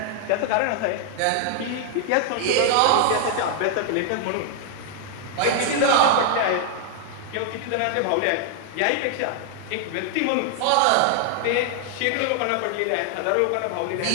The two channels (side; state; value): both; different; correlation 0.00